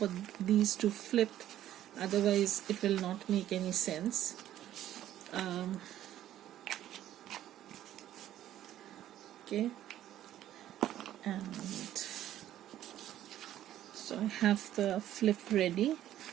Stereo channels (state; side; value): quieter; left; 12.4 dB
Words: these to flip, otherwise it will not make any sense. Okay, and so I have the flip ready,